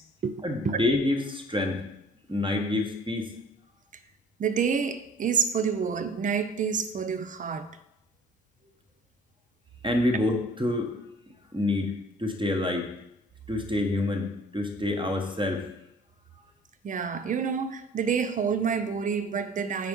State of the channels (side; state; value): both; normal; correlation 0.49